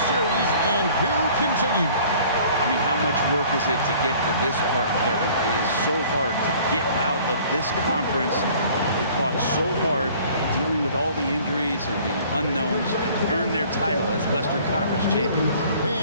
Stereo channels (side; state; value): both; inverted; correlation -0.52